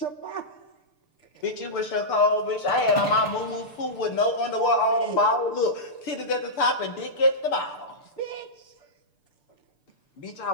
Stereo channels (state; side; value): late; right; 6.8 ms